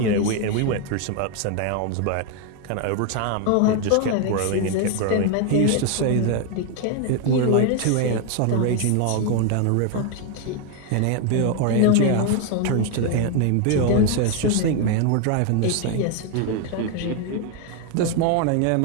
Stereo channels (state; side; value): different; both; correlation 0.01